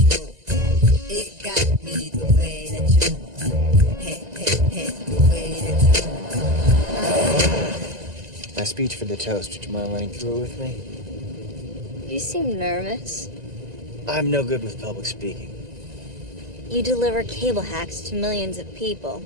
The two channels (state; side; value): late; left; 1.9 ms